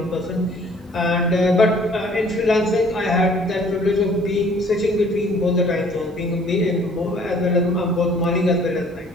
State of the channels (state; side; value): normal; both; correlation 0.56